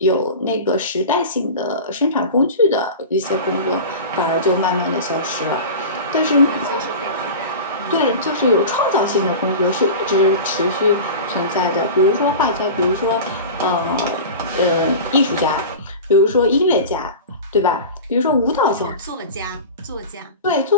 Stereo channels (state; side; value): inverted; both; correlation -0.31